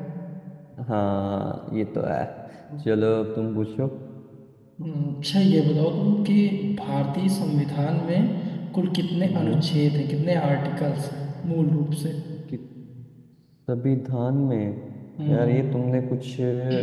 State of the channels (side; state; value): both; identical; correlation 1.00